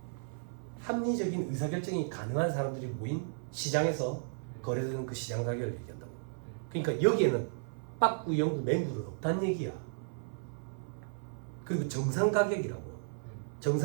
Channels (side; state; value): left; silent; 55 dB below the other